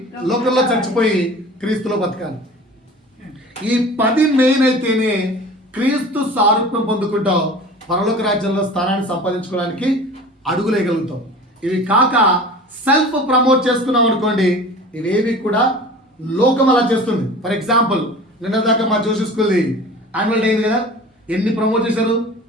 లోకంలో చచ్చిపోయి క్రీస్తులో బతకాలి. ఈ 10 మెయిన్ అయితేనే క్రీస్తు సారూప్యం పొందుకుంటావు, పరలోక రాజ్యంలో స్థానాన్ని సంపాదించుకోవడానికి అడుగులేయగలుగుతాం. ఇవి కాక సెల్ఫ్ ప్రమోట్ చేసుకున్నాం అనుకోండి, ఇవేవి కూడా లోకం అలా చేస్తుంది. ఫర్ ఎగ్జాంపుల్, నిన్న దాకా మా జోషి స్కూల్ది యాన్యువల్ డే అయింది కదా, ఎన్ని ప్రమోట్ చేశారు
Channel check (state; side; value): normal; both; correlation 0.40